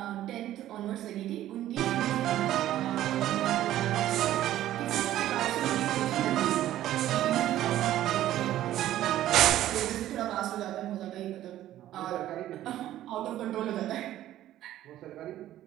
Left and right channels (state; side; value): quieter; left; 13.3 dB